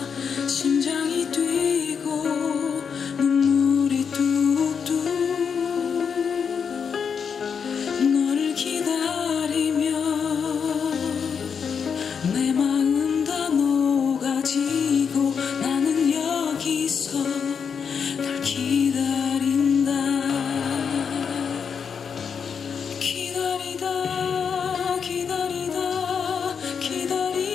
심장이 뛰고 눈물이 뚝뚝 너를 기다리며 내 마음 다 녹아지고 나는 여기서 널 기다린다. 기다리다 기다리다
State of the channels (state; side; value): quieter; right; 6.6 dB